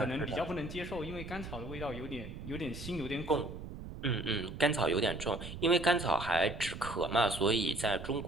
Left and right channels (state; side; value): noise; right; rumble, 10 dB below the sound